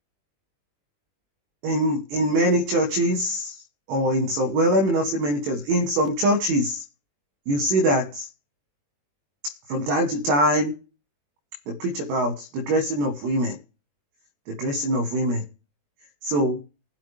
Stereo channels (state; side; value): late; left; 21 ms